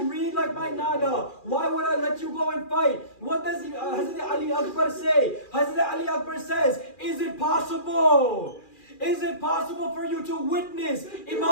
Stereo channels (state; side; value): late; right; 2.4 ms